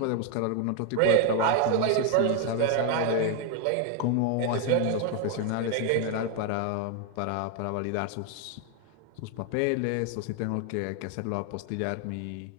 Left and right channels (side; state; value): both; different; correlation 0.01